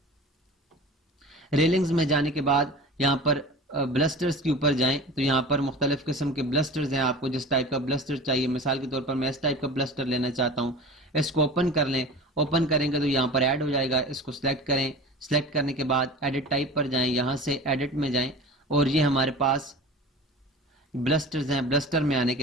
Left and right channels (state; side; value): normal; both; correlation 0.36